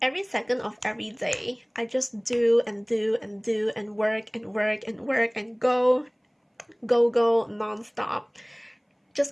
Every second of every day, I just do and do and do and work and work and work and go non-stop,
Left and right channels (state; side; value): identical; both; correlation 1.00